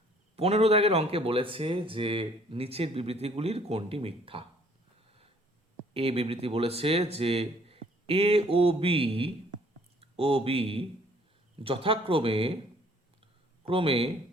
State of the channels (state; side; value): normal; both; correlation 0.59